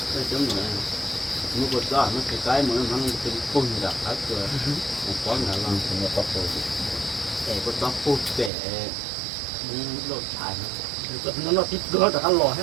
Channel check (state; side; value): drops out; left; at 8.5 s